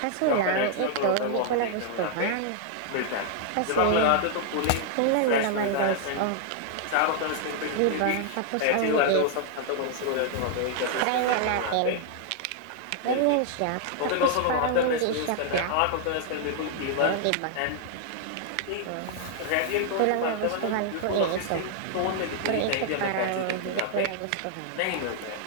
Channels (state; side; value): different; both; correlation -0.01